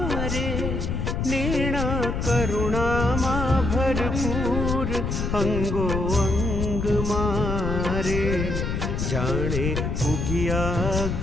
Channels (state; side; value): noise; left; rumble, 1 dB below the sound